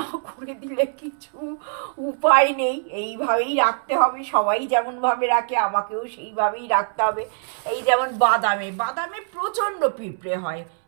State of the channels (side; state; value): left; silent; 63 dB below the other